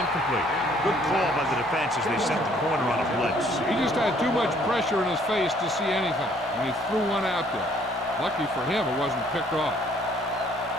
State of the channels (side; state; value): both; normal; correlation 0.61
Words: Good call by the defense as they set the corner on a blitz. He just had too much pressure in his face to see anything, and he threw one out there. Lucky for him, it wasn't picked off.